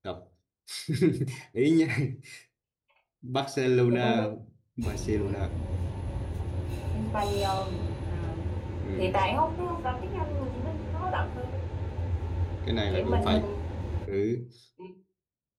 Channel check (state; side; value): identical; both; correlation 1.00